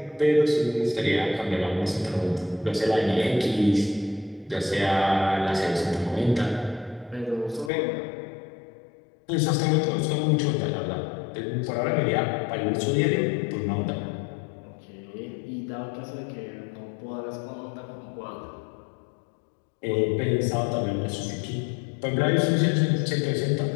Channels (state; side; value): drops out; right; at 7.7 s